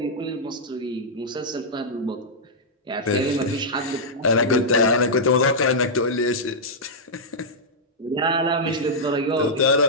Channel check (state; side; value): normal; both; correlation -0.08